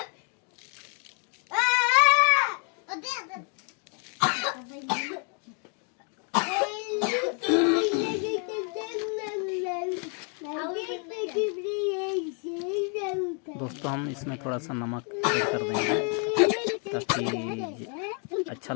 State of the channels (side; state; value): right; quieter; 39.7 dB